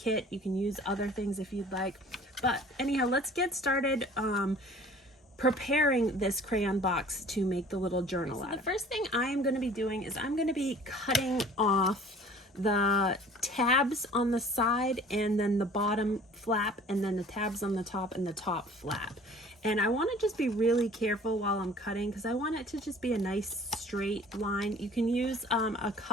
You can use other things if you'd like. But anyhow, let's get started preparing this crayon box to make the little journal out of. The first thing I am going to be doing is I'm going to be cutting off the tabs on the side and then the bottom flap and then the tabs on the top and the top flap. And I want to just be really careful while I'm cutting because I want it to just be a nice straight line. You can use a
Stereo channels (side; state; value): both; normal; correlation 0.49